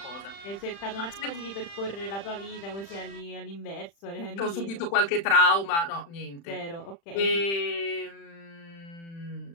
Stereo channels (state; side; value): late; right; 35 ms